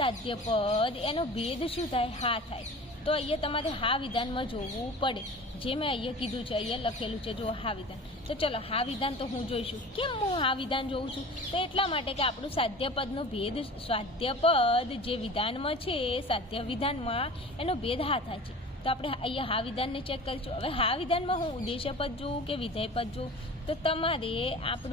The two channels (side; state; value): both; normal; correlation 0.39